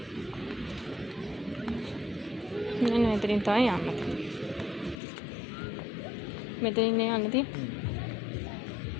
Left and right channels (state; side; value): drops out; right; at 5.0 s